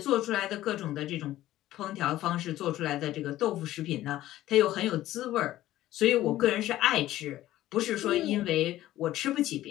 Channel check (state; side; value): quieter; right; 14.6 dB